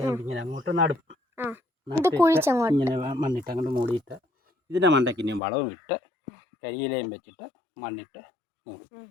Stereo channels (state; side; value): drops out; right; at 5.4 s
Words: അങ്ങോട്ട് നടും. ഇങ്ങനെ മണ്ണിട്ട് അങ്ങോട്ട് മൂടിയിട്ട് ഇതിൻ്റെ മണ്ടയ്ക്ക് ഇനിയും വളവും ഇട്ട് കരിയിലയും വെച്ചിട്ട് മണ്ണിട്ട് മൂടും.